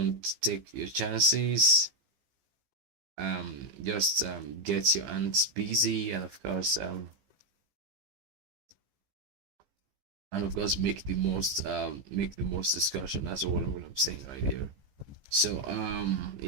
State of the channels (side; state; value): left; late; 15 ms